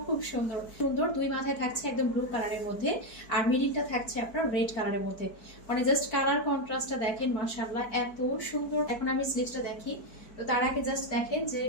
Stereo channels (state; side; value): late; right; 4.6 ms